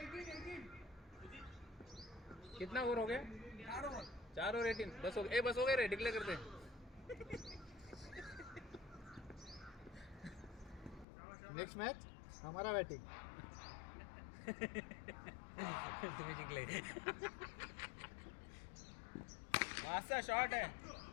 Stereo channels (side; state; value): right; drops out; at 11.1 s